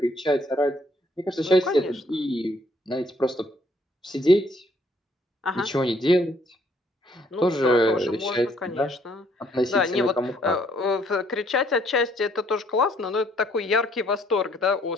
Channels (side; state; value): both; normal; correlation 0.66